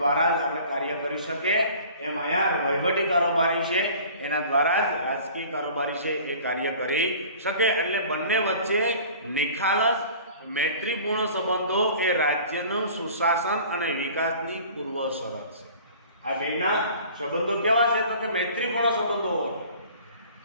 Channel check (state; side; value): inverted; both; correlation -0.46